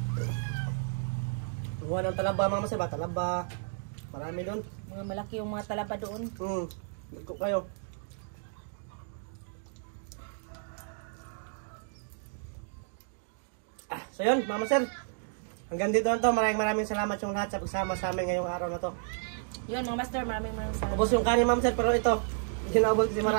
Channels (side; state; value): left; silent; digital silence